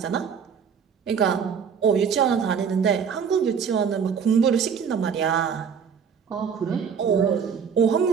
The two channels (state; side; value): quieter; left; 6.9 dB